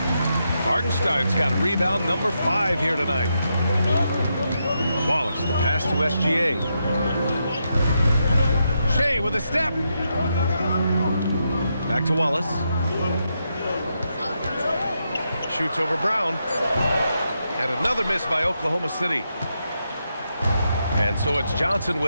Hartenstein's got rebound number 5 here tonight. Wallace, the pass to SGA. Shea with a step. Back to Wallace. Shoots over Brown. And another miss by Oklahoma City. And so it's Johnson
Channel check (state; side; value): inverted; both; correlation -0.83